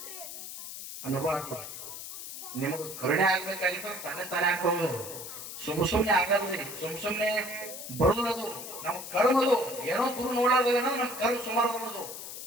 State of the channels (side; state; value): left; noise; hiss, 9 dB below the sound